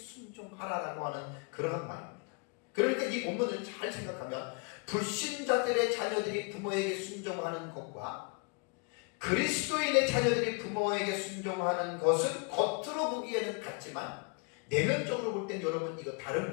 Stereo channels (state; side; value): quieter; right; 33.7 dB